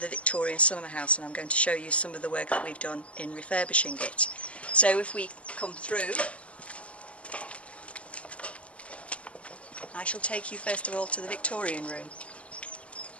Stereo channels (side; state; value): right; late; 0.062 ms